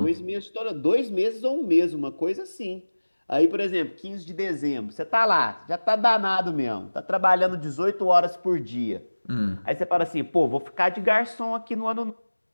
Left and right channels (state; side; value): inverted; both; correlation -1.00